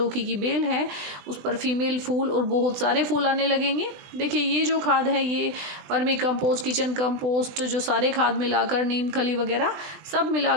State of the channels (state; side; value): late; left; 20 ms